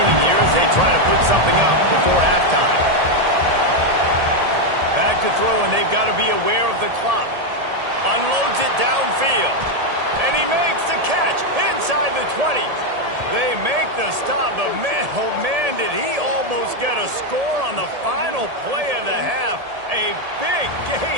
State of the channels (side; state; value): left; late; 1.8 ms